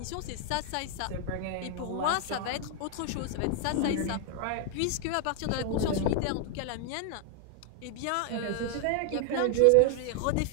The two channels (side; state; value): both; different; correlation 0.00